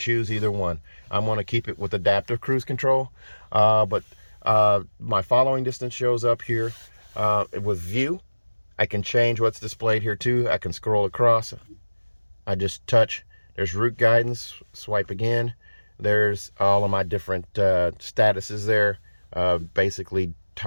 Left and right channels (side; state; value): both; inverted; correlation -1.00